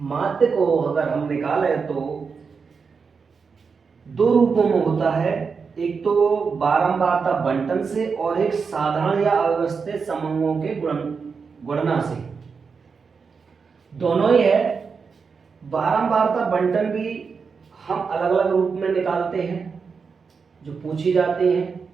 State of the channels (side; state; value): left; quieter; 5.4 dB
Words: माध्य को अगर हम निकालें तो दो रूपों में होता है, एक तो बारंबारता बंटन से और एक साधारण या अव्यवस्थित समूहों के गुणना से। दोनों ही है। बारंबारता बंटन भी हम अलग अलग रूप में निकालते हैं जो पूछी जाते हैं।